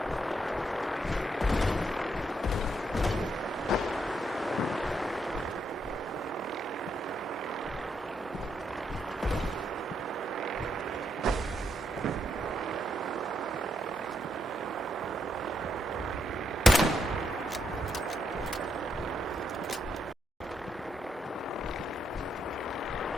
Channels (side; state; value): both; normal; correlation 0.78